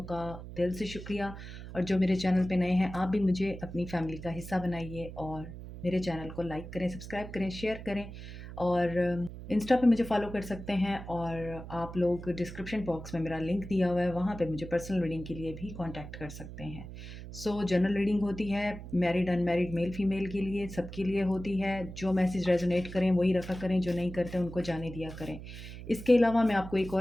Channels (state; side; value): noise; right; hum, 12 dB below the sound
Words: का दिल से शुक्रिया। और जो मेरे चैनल पे नए हैं, आप भी मुझे अपनी फैमिली का हिस्सा बनाइए और मेरे चैनल को लाइक करें, सब्सक्राइब करें, शेयर करें और इंस्टा पे मुझे फॉलो कर सकते हैं। और आप लोग डिस्क्रिप्शन बॉक्स में मेरा लिंक दिया हुआ है, वहाँ पे मुझे पर्सनल रीडिंग के लिए भी कांटेक्ट कर सकते हैं। जनरल रीडिंग होती है मैरिड अनमैरिड मेल फीमेल के लिए, सबके लिए होती है। जो मैसेज रेजोनेट करें वही रखा करें, जो नहीं करते उनको जाने दिया करें। इसके अलावा मैं आपको एक